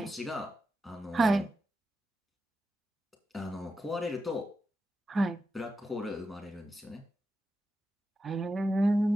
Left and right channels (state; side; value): normal; both; correlation 0.90